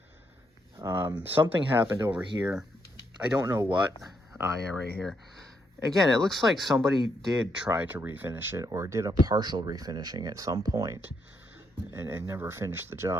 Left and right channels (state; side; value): normal; both; correlation 0.77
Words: Something happened over here. I don't know what. Yeah, right here. Again, it looks like somebody did try to refinish it, or did a partial refinishing at some point and never finished the